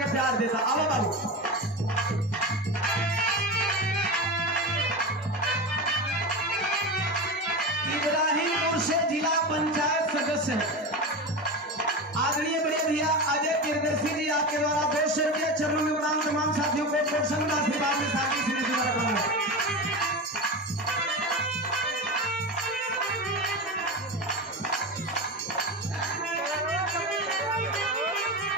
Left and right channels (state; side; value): normal; both; correlation 0.23